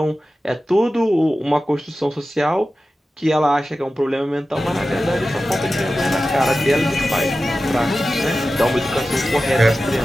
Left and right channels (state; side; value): normal; both; correlation 0.94